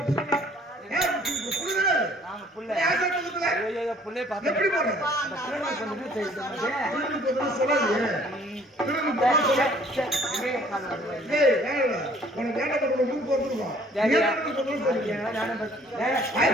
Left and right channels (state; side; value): normal; both; correlation 0.57